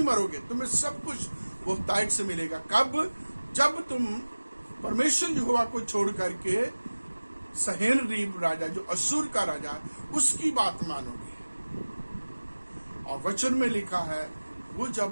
मरोगे, तुम्हें सब कुछ बहुतायत से मिलेगा। कब? जब तुम परमेश्वर यहोवा को छोड़ करके सहेनरीब राजा, जो असूर का राजा, उसकी बात मानोगे। और वचन में लिखा है वो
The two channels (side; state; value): both; inverted; correlation -1.00